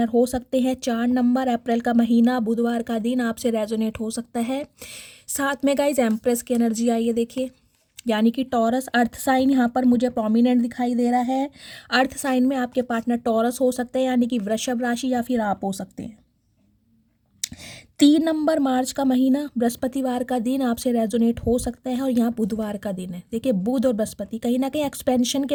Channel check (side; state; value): both; identical; correlation 1.00